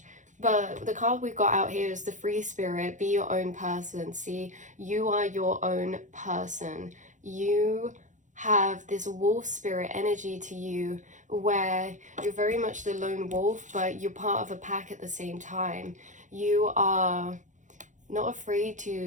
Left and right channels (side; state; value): left; late; 0.36 ms